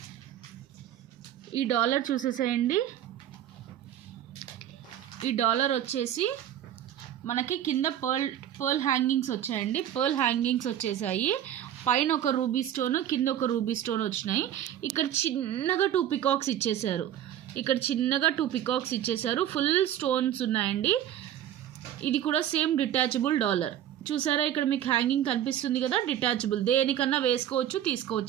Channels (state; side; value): quieter; left; 11.1 dB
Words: ఈ డాలర్ చూసేసేయండి. ఈ డాలర్ వచ్చేసి మనకి కింద పర్ల్ హ్యాంగింగ్స్ వచ్చాయండి. పర్ల్ హ్యాంగింగ్స్ వచ్చేసాయి. పైన ఒక రూబీ స్టోన్, కింద ఒక రూబీ స్టోన్ వచ్చినాయి. ఇక్కడ చిన్నగా 2 పికాక్స్ ఇచ్చేసారు. ఫుల్ స్టోన్స్ ఉన్నాయండి. ఇది కూడా సేమ్ డిటాచబుల్ డాలర్. చూసారా ఇక్కడ మీకు హ్యాంగింగ్ కనిపిస్తుంది కదా, డిటాచబుల్. దేనికన్నా వేసుకోవచ్చు,